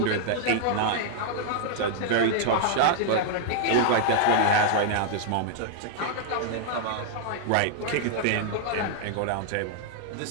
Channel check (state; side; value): different; both; correlation 0.00